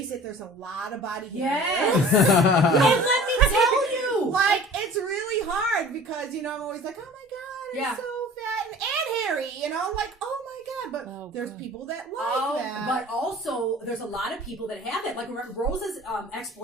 it, there's a lot of body hair. Yes. And let me tell you. Like, it's really hard because, I'm always like, oh my God, it's so fat and hairy, like, oh my God. But there's people that like that. But also, there's a lot of people that have that. Like, Rosa's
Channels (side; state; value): both; normal; correlation 0.45